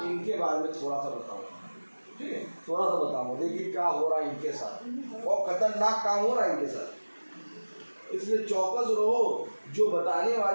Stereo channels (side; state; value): both; inverted; correlation -1.00